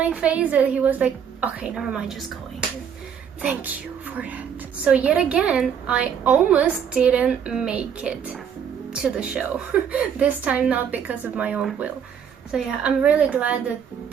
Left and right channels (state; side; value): quieter; left; 7.8 dB